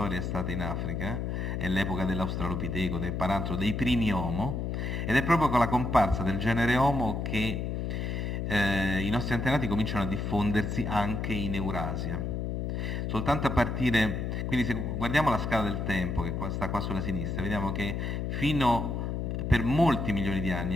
è stata in Africa, è l'epoca dell'Australopiteco, del Paranthro, dei primi Homo, ed è proprio con la comparsa del genere Homo che i nostri antenati cominciano a diffondersi anche in Eurasia. Soltanto a partire, quindi se guardiamo la scala del tempo che sta qua sulla sinistra, vediamo che per molti milioni di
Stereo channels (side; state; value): left; noise; hum, 2 dB below the sound